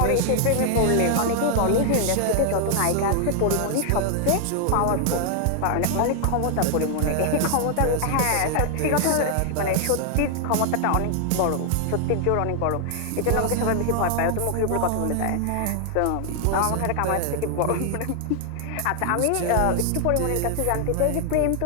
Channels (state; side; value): different; both; correlation 0.00